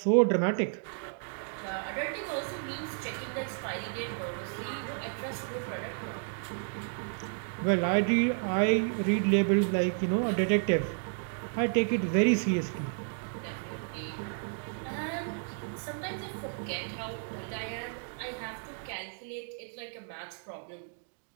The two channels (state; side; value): silent; left; 56 dB below the other